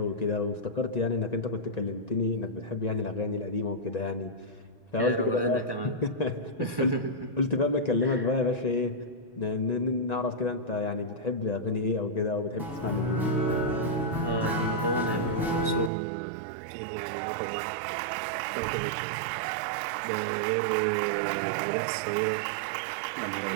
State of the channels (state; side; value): drops out; left; at 15.9 s